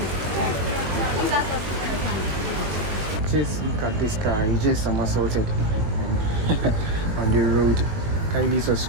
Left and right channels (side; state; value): left; late; 21 ms